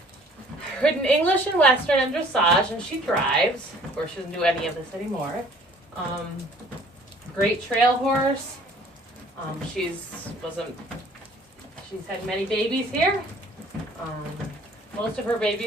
ridden English and Western and dressage, and she drives. Of course, she doesn't do any of this anymore. Great trail horse. She's had many babies here. Most of her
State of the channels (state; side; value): normal; both; correlation 0.55